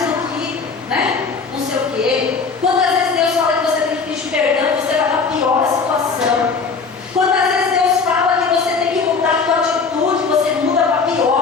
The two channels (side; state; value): right; quieter; 4.9 dB